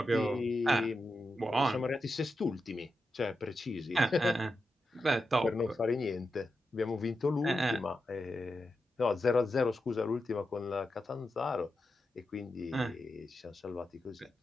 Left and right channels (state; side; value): normal; both; correlation 0.89